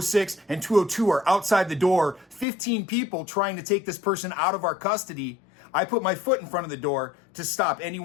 and 202 are outside the door, 15 people trying to take this person out of our custody. I put my foot in front of the door to stop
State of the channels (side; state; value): right; drops out; at 2.5 s